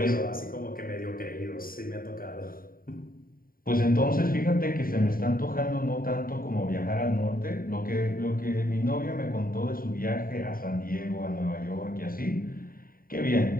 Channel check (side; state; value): right; late; 0.42 ms